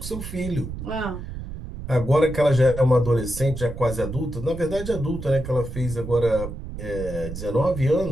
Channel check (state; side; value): noise; right; rumble, 9 dB below the sound